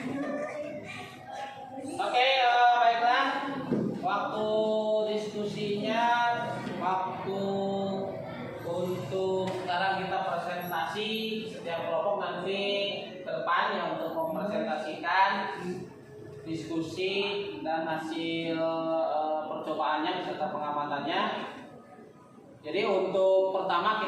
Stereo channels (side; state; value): both; identical; correlation 1.00